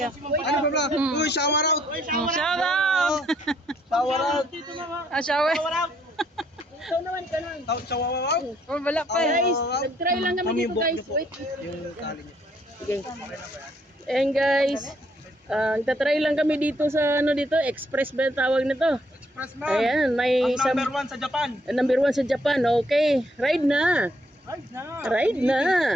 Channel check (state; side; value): normal; both; correlation 0.69